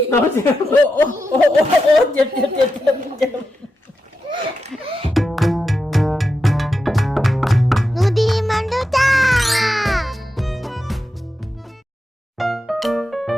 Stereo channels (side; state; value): both; normal; correlation 0.88